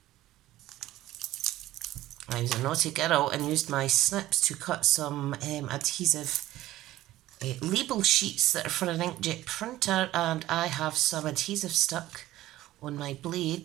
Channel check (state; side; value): quieter; left; 15.5 dB